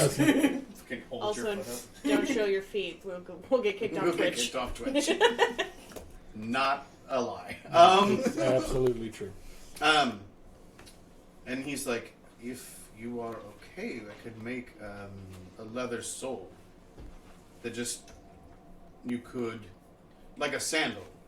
hold Also, your foot up. don't show your feet. We'll get kicked We'll off get Twitch. kicked off Twitch. Not a lie. It's absolutely true. And he's like, if you are okay, I could make a leather sole that just you could, like a sandal,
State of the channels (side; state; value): both; identical; correlation 1.00